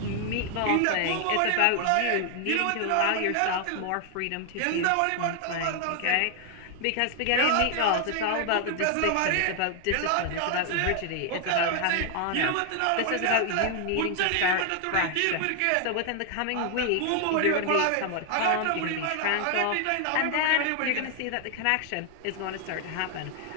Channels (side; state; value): both; different; correlation 0.00